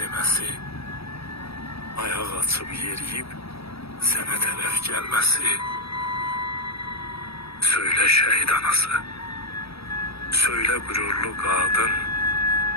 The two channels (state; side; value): late; right; 0.77 ms